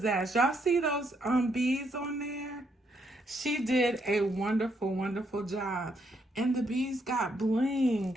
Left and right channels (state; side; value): normal; both; correlation 0.75